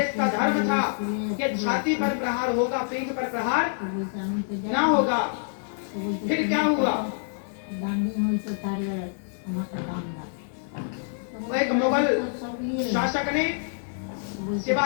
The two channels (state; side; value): silent; right; 60 dB below the other